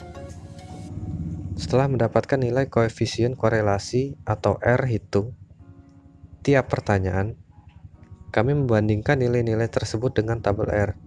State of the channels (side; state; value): both; identical; correlation 1.00